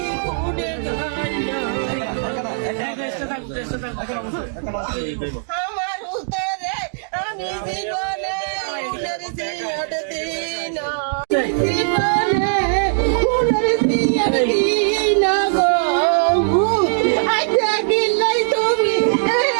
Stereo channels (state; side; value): silent; left; digital silence